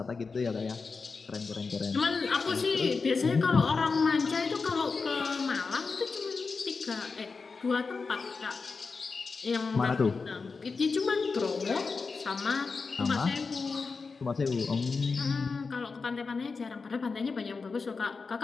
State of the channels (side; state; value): right; quieter; 4.6 dB